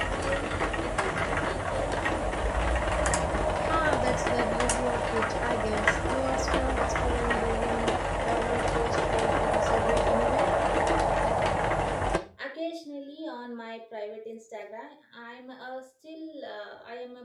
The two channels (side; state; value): both; identical; correlation 1.00